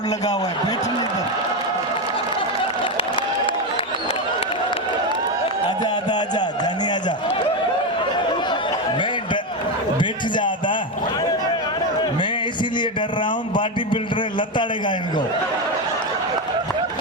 लगा हुआ है। बैठने दो, आजा आजा आजा, जानी आजा, बैठ जा आदा। मैं इसीलिए डर रहा हूँ, बॉडी बिल्डर लताड़ेगा इनको।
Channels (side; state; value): both; normal; correlation 0.11